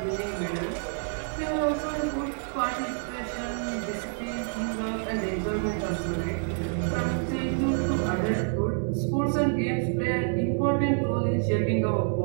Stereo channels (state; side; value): silent; left; 60 dB below the other